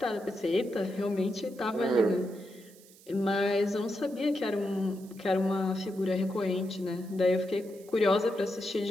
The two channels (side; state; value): right; noise; hiss, 24 dB below the sound